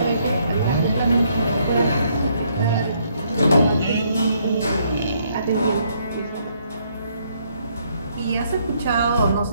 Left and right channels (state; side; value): inverted; both; correlation -0.70